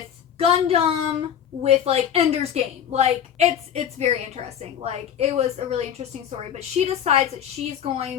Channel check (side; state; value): right; quieter; 9.1 dB